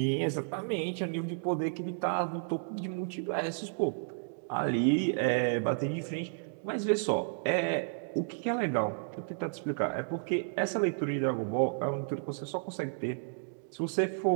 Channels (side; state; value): left; silent; digital silence